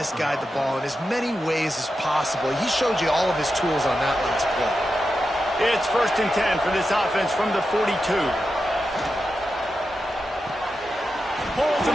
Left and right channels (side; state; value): both; normal; correlation 0.89